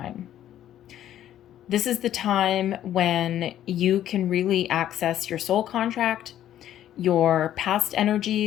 This is the time when you can really access your soul contract, your past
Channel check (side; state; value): right; quieter; 11.7 dB